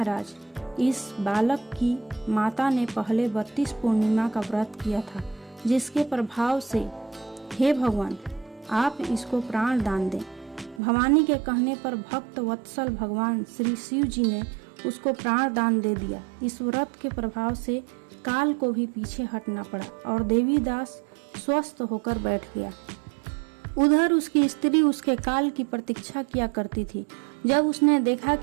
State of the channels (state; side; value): drops out; left; at 10.8 s